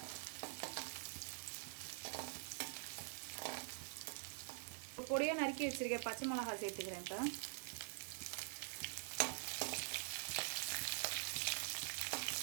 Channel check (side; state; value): left; silent; digital silence